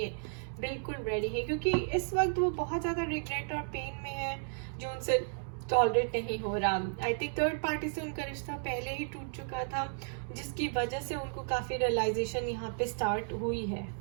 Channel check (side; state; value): left; silent; digital silence